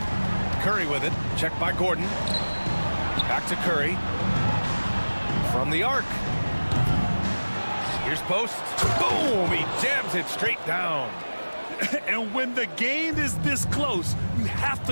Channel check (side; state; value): both; inverted; correlation -1.00